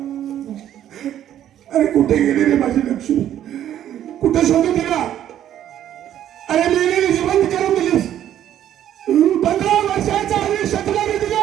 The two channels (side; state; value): left; quieter; 11.1 dB